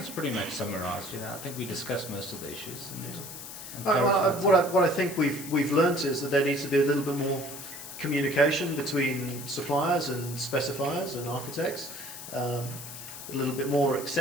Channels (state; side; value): noise; left; hiss, 11 dB below the sound